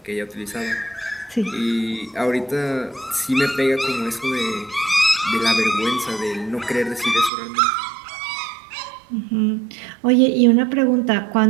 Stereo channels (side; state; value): left; drops out; at 7.3 s